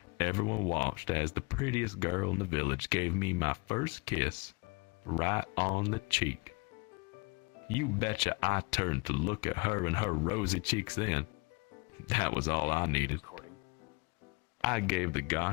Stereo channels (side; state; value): right; quieter; 28.2 dB